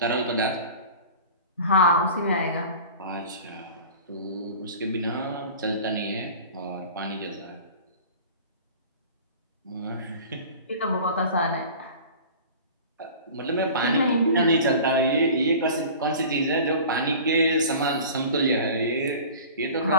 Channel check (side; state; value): both; inverted; correlation -0.40